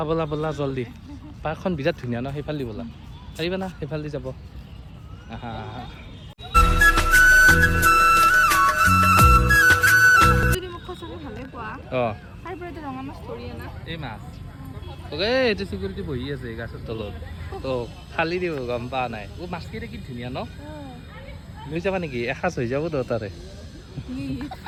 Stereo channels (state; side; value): identical; both; correlation 1.00